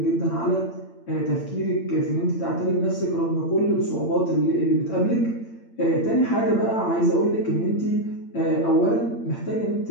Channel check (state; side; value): late; right; 8.8 ms